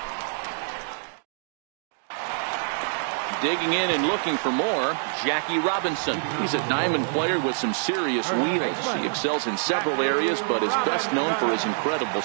Digging in and looking for more, Jackie Robinson. He's a diamond player with some serious wheels. He excels in several areas, but is best known for his incredible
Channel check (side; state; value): left; silent; digital silence